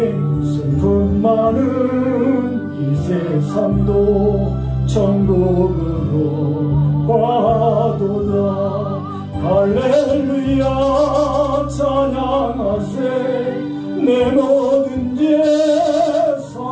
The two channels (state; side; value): identical; both; correlation 1.00